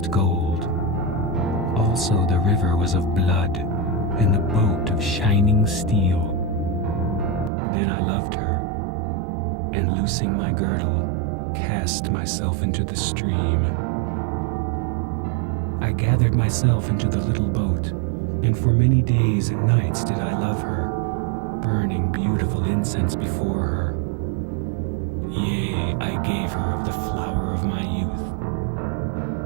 gold. Also the river was of blood, and the boat of shining steel. Then I loved her, and loosing my girdle, cast myself into the stream. I gathered myself into the little boat, and for many days and nights did I love her, burning beautiful incense before her. Yea, I gave her of the flower of my youth.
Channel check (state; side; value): drops out; left; at 7.5 s